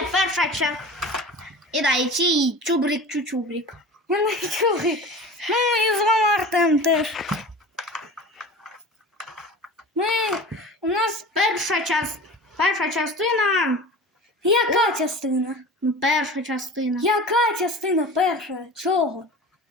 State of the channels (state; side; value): normal; both; correlation 0.36